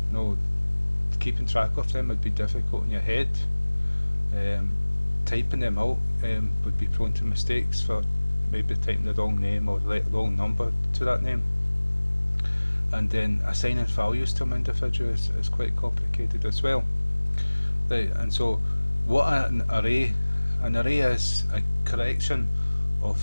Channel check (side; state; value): both; inverted; correlation -1.00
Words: keeping track of them would be difficult in your head. Typing them out would be prone to mistakes for maybe typing the wrong name or the wrong number to that name. And then assigning values to them individually is quite complicated as well. And so what an array is a collection